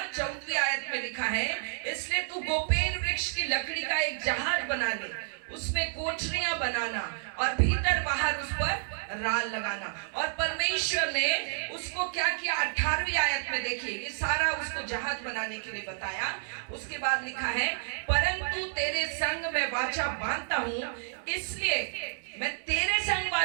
14वीं आयत में लिखा है, इसलिए तू गोपेन वृक्ष की लकड़ी का एक जहाज बना ले, उसमें कोठरियां बनाना और भीतर बाहर उस पर राल लगाना। और परमेश्वर ने उसको क्या किया? 18वीं आयत में देखिए, ये सारा उसको जहाज बनाने के लिए बताया। उसके बाद लिखा है, परंतु तेरे संग मैं वाचा बांधता हूं, इसलिए मैं तेरे संग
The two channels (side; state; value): left; silent; digital silence